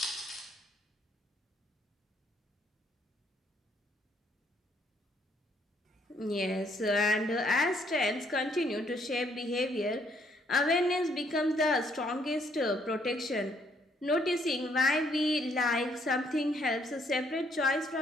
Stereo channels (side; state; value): both; normal; correlation 0.69